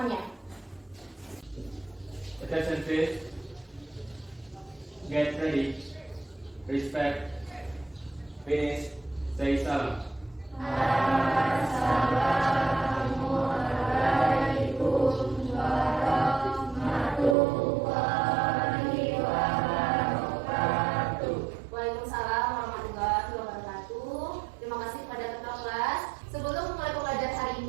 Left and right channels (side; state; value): left; drops out; at 17.4 s